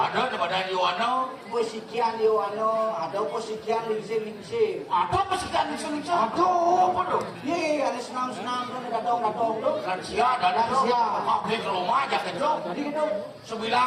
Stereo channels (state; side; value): identical; both; correlation 1.00